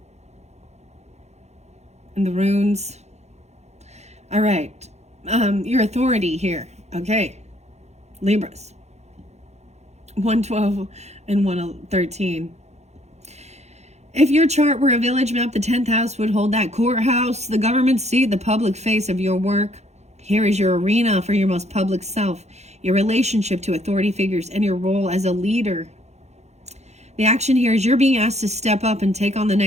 and the runes. All right. Your authority here. Okay. Libras. 112 and 113. If your chart were a village map, the 10th house would hold that courthouse, the government seat, the public face of your work. Here is your arena for your most public self, your relationship to authority figures, and your role as a leader. The action here is you're being asked to step up and take on the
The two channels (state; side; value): late; left; 0.32 ms